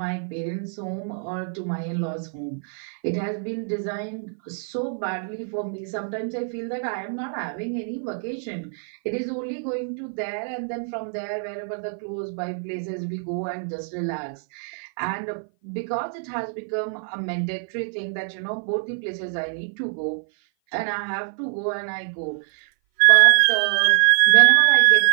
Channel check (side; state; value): left; silent; 57 dB below the other